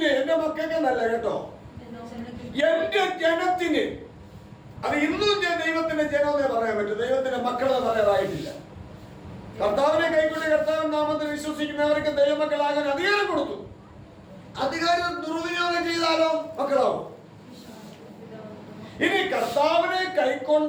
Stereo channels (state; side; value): identical; both; correlation 1.00